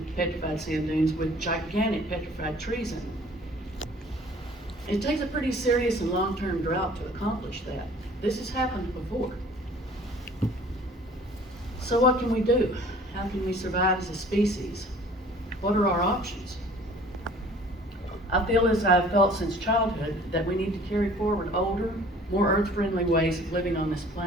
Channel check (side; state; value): both; normal; correlation 0.51